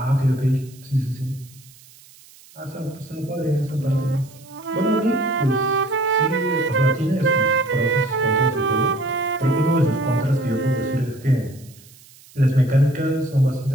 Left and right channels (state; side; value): noise; right; hiss, 24 dB below the sound